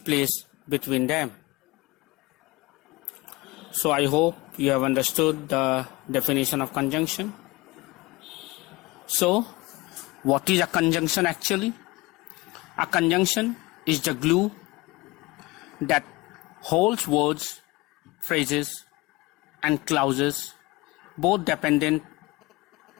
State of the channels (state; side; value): quieter; right; 22.3 dB